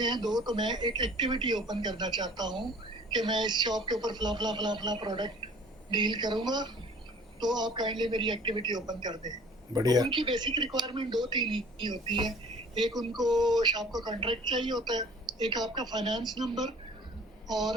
हैं दो, तो मैं एक एक्टिविटी ओपन करना चाहता हूँ कि मैं इस शॉप के ऊपर फला फला फला फला प्रोडक्ट डील करूँगा, तो आप काइंडली मेरी एक्टिविटी ओपन कर दें। तो बढ़िया। उनकी बेसिक रिक्वायरमेंट 2-3 ही होती है। एक उनको शॉप का कॉन्ट्रैक्ट चाहिए होता है, एक आपका फाइनेंस नंबर,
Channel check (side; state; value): both; normal; correlation 0.49